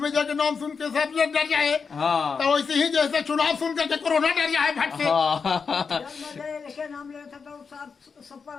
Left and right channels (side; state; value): right; quieter; 5.5 dB